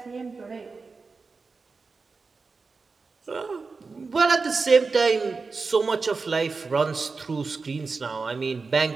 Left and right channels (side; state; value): left; quieter; 4.4 dB